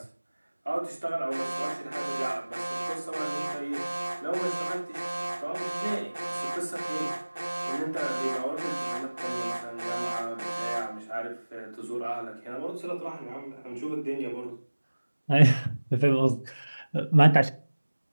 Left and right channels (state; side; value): inverted; both; correlation -1.00